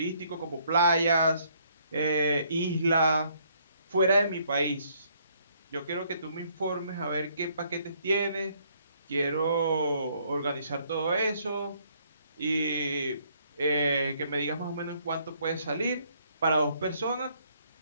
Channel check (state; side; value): inverted; both; correlation -0.67